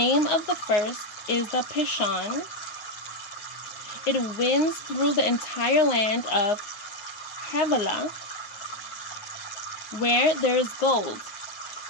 of the first is the Pishon. It winds through the entire land of Havilah, where there is gold.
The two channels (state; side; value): late; right; 9.6 ms